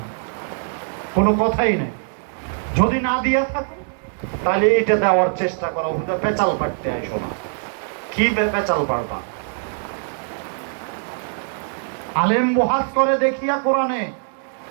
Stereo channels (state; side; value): silent; left; 57 dB below the other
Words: কোনো কথাই নাই। যদি না দিয়া থাকো তাহলে এটা দেওয়ার চেষ্টা করো, পেঁচাল পাড়তে আইসো না। কি পেঁচাল পাড়বা? আলেম বহাস করে দেখিয়া কোরআনে,